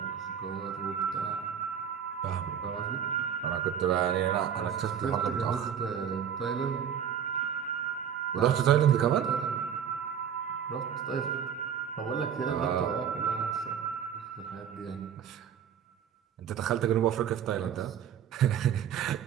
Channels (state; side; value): quieter; left; 8.4 dB